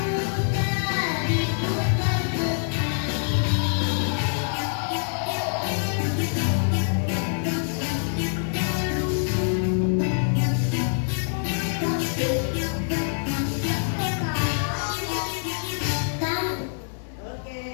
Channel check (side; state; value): right; silent; digital silence